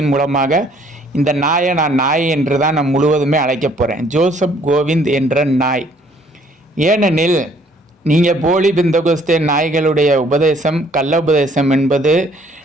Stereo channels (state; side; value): normal; both; correlation 0.61